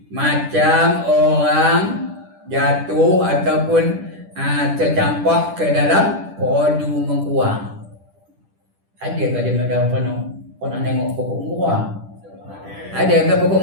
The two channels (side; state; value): left; late; 10 ms